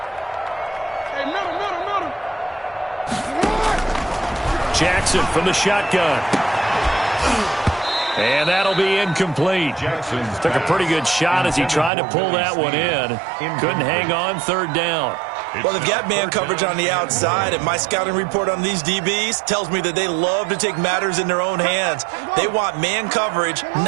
Jackson from the shotgun. And that'll be incomplete. Jackson took a pretty good shot as he tried to pull that one in. Couldn't hang on 3rd down. Well, they've got man coverage on the outside, and my scouting report on these DBs tells me that they love to take matters in their own hands. They want man coverage,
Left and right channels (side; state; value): left; drops out; at 11.9 s